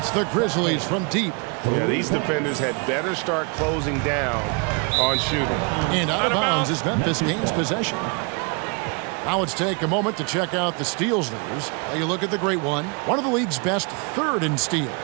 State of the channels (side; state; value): left; quieter; 34.2 dB